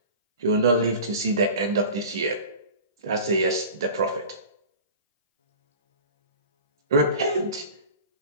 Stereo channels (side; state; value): both; inverted; correlation -0.38